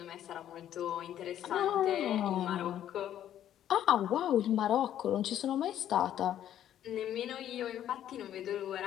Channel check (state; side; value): quieter; right; 11.1 dB